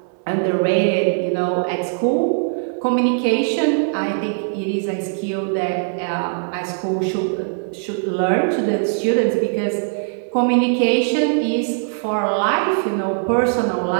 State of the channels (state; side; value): silent; left; 63 dB below the other